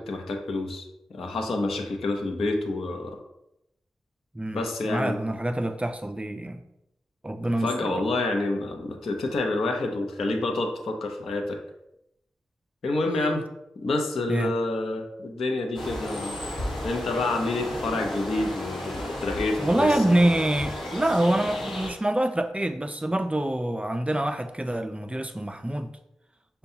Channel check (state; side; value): normal; both; correlation 0.89